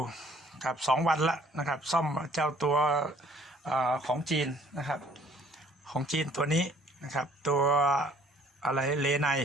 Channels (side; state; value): both; normal; correlation 0.58